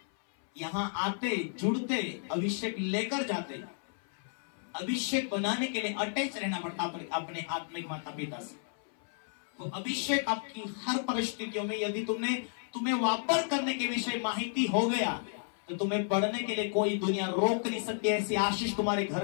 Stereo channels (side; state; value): right; silent; 56 dB below the other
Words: यहां आते जुड़ते अभिषेक लेकर जाते। अभिषेक बनाने के लिए अटैच रहना पड़ता अपने आत्मिक माता पिता से। वो अभिषेक आपकी हर परिस्थितियों में, यदि तुम्हें वापर करने के विषय माहिती हो गया तो तुम्हें बढ़ने के लिए कोई दुनिया रोक नहीं सकती। ऐसी आशीष तुम्हारे